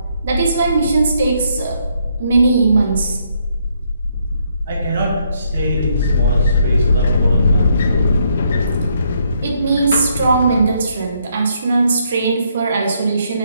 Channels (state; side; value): inverted; both; correlation -0.72